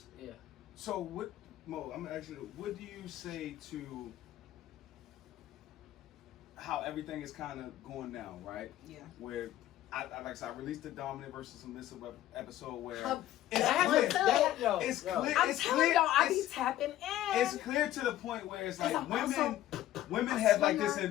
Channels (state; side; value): quieter; right; 13.5 dB